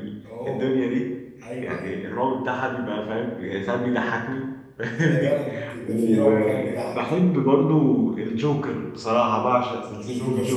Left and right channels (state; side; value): identical; both; correlation 1.00